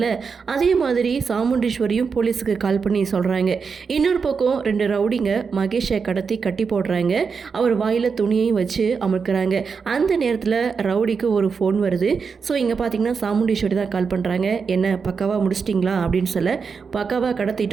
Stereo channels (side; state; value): left; quieter; 5.6 dB